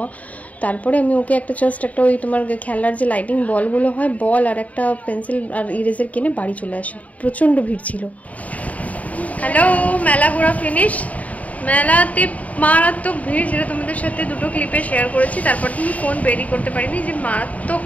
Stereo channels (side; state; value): right; late; 0.070 ms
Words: তারপরে আমি ওকে একটা জাস্ট একটা ওই তোমার খেলার যে লাইটিং বলগুলো হয়, বল আর একটা পেন্সিল আর ইরেজার কিনে বাড়ি চলে আসি। প্রচণ্ড ভিড় ছিল। হ্যালো, মেলা ঘোরা ফিনিশ। মেলাতে মারাত্মক ভিড়, যেটা তোমাদের সাথে দুটো ক্লিপে শেয়ার করেছি। তারপর তুমি ফোন বেরি করতে পারিনি, যে মারাত্মক